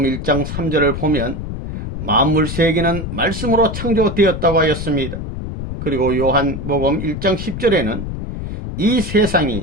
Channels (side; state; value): left; noise; rumble, 6 dB below the sound